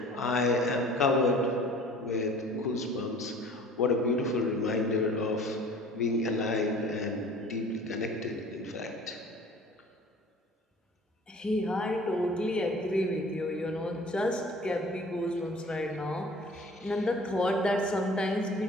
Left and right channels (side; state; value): both; normal; correlation 0.47